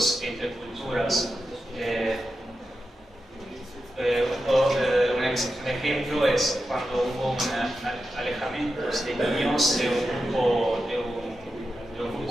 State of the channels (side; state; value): both; normal; correlation 0.90